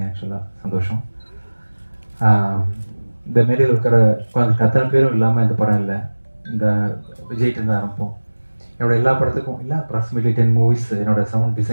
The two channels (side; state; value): both; inverted; correlation -1.00